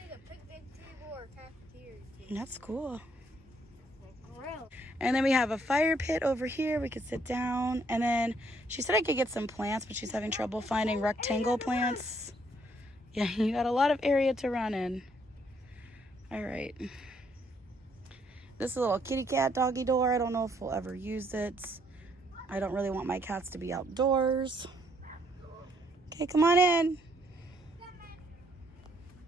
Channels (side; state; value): both; normal; correlation 0.69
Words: a picnic table or cafeteria table. That's cool. Grill. And then we have a fire pit over here. We could sit down. And then she said I could get some plants, but she's having trouble finding rectangle plants. Yeah, you got a lot of area to run in. All right. This is a little kitty cat doggy door. I don't know if we'll ever use it. I don't really want my cats to be outdoors. Okay, come on in.